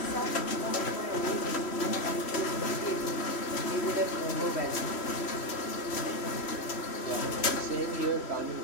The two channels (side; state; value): right; late; 3.1 ms